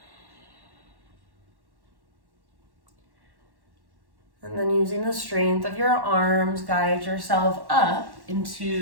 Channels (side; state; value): left; late; 1.1 ms